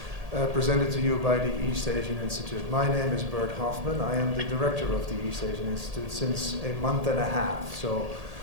presented to you by the East Asian Institute. My name is Bert Hofman. I am the director of the East Asian Institute since a month and a half. So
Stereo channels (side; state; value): left; late; 1.8 ms